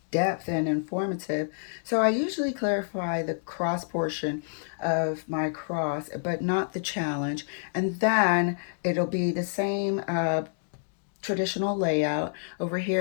depth, and informative. So I usually clarify the cross portion of my cross, but not the challenge. And then it'll be the same traditional layout. Over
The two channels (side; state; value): right; silent; digital silence